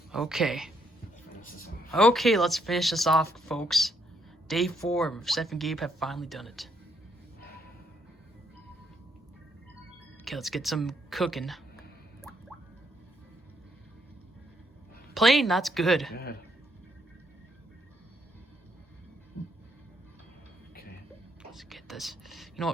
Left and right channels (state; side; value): normal; both; correlation 0.74